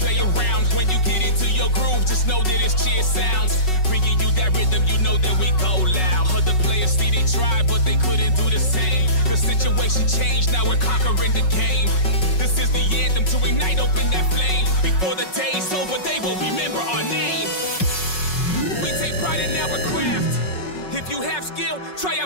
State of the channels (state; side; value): late; right; 5.4 ms